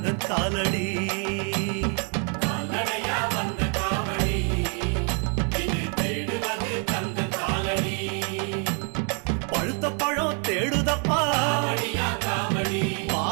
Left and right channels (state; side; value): quieter; left; 38.3 dB